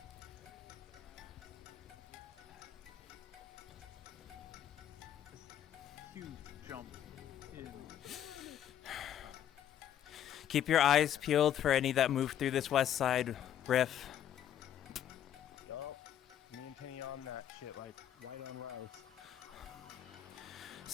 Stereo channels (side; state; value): right; quieter; 10.5 dB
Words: Huge jump in. Keep your eyes peeled for any that move through this west side riff. Me and Kenny on that shit, like white on rice.